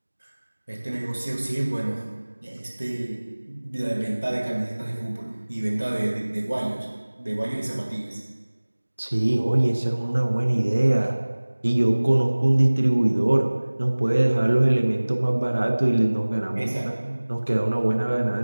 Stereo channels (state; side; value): inverted; both; correlation -1.00